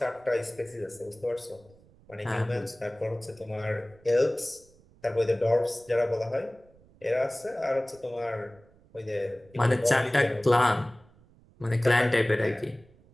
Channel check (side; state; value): right; noise; rumble, 28 dB below the sound